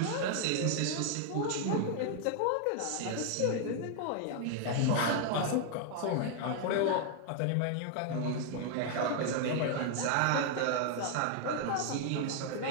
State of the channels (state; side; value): different; both; correlation 0.00